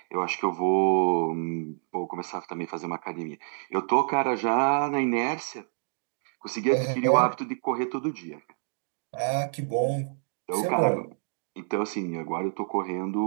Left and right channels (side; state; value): left; silent; digital silence